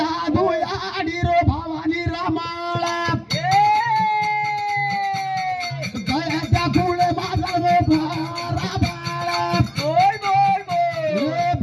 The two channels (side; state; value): both; identical; correlation 1.00